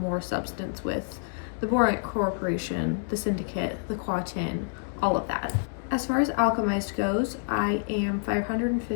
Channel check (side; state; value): right; silent; digital silence